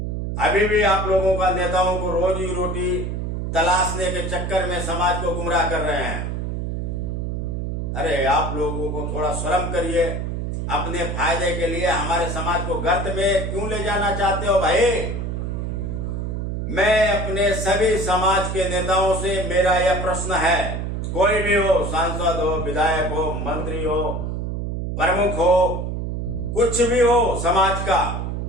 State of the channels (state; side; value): noise; right; hum, 3 dB below the sound